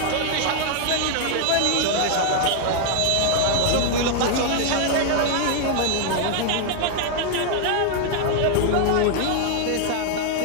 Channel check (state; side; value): different; both; correlation 0.00